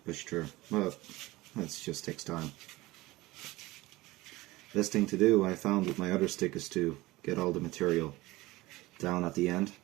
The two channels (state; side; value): quieter; left; 19.7 dB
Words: push through, but it just takes time. Best thing to do, I found with my other stick, is to get all the material down at the end,